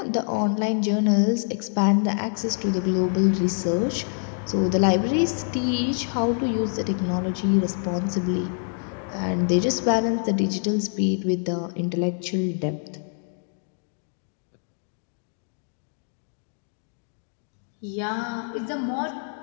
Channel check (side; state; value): right; silent; 61 dB below the other